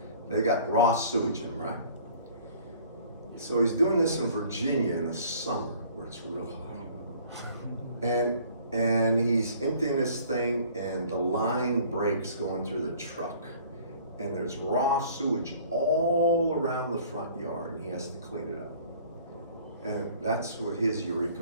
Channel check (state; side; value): inverted; both; correlation -0.52